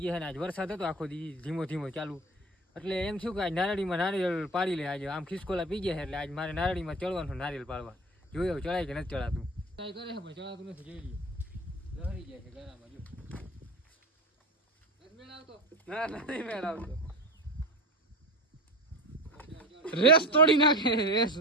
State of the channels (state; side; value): normal; both; correlation 0.30